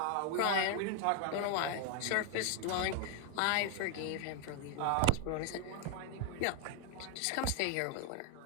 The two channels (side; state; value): both; different; correlation 0.00